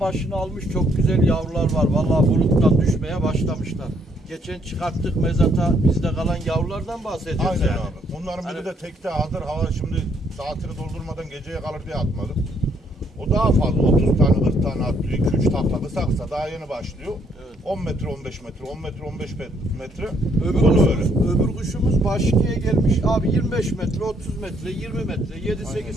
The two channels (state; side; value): normal; both; correlation 0.69